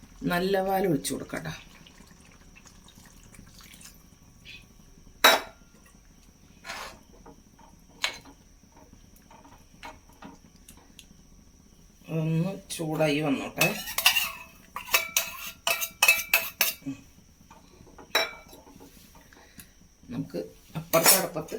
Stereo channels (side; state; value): both; identical; correlation 1.00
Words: നല്ല പാൽ ഒഴിച്ച് കൊടുക്കാം കേട്ടോ. ഒന്ന് ചൂടായി വന്നോട്ടെ. നമുക്ക് അപ്പുറത്തെ അടുപ്പത്ത്